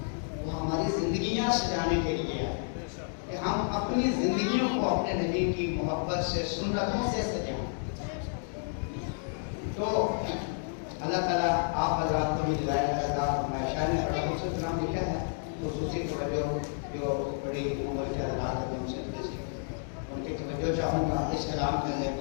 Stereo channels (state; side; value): silent; right; digital silence